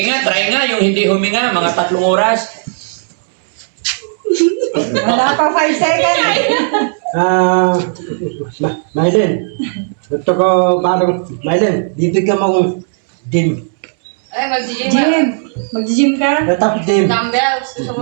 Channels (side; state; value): left; silent; 69 dB below the other